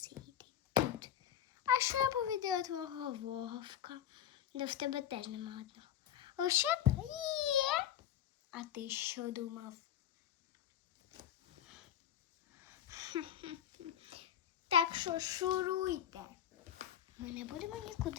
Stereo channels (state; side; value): quieter; right; 10.3 dB